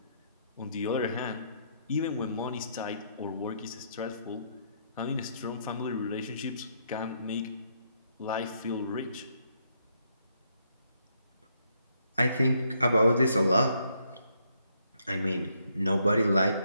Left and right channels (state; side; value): inverted; both; correlation -0.74